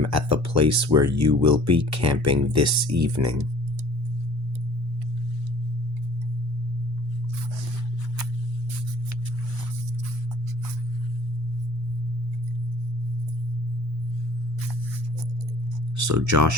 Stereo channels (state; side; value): normal; both; correlation 0.51